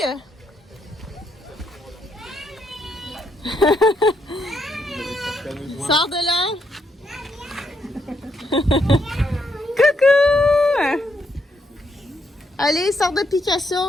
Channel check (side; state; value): both; normal; correlation 0.77